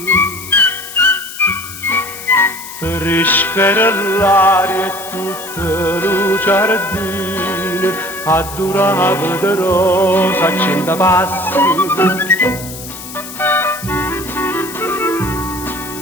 Fresca era l'aria e tutta lo giardino, addurava de rosa a 100 passi.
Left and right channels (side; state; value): left; noise; hiss, 12 dB below the sound